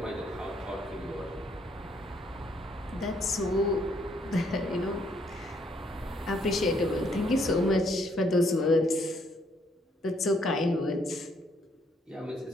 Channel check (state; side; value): normal; both; correlation 0.70